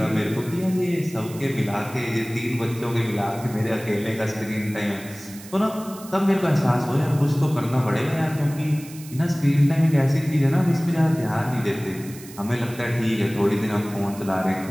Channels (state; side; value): noise; right; hiss, 18 dB below the sound